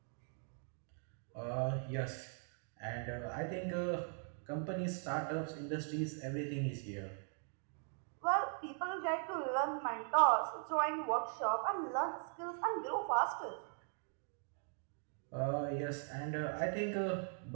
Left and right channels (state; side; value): silent; left; 51 dB below the other